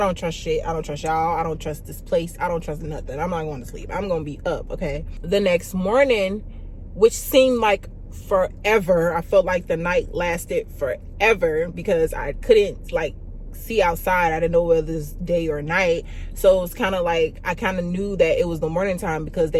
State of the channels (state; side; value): identical; both; correlation 1.00